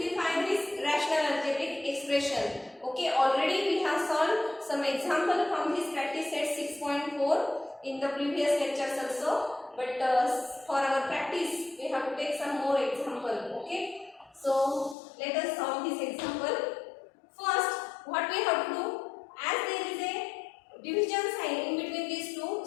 this rational algebraic expression. Okay. Already we have solved some example from this practice set 6.4 in the previous lectures also. But for our practice we have to take some more example. Okay. So let us solve this example. First, what we have to do, as there is a division sign in between these two,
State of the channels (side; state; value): right; drops out; at 15.0 s